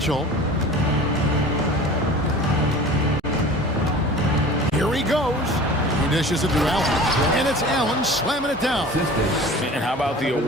Here he goes. He dishes it to Allen. And it's Allen slamming it down. And how about the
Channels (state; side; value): normal; both; correlation 0.41